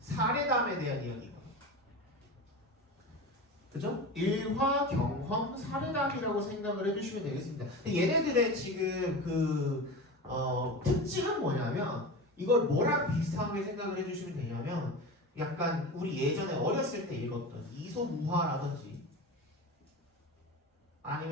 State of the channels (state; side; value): normal; both; correlation 0.28